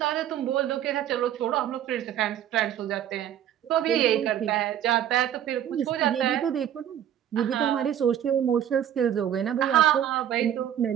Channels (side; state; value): left; quieter; 10.5 dB